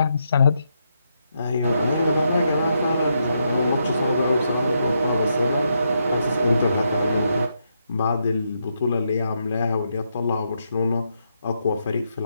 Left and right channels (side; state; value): both; inverted; correlation -0.80